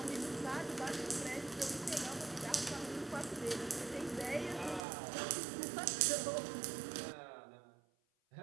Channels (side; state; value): left; drops out; at 4.8 s